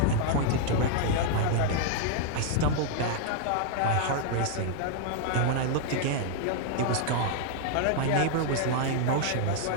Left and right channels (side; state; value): both; different; correlation -0.01